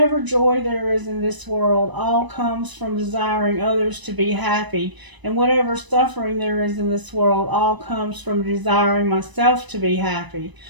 joy there is in this world, all comes from desiring others to be happy, and whatever suffering there is in this world, all comes from desiring myself to be happy.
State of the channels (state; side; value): late; left; 1.0 ms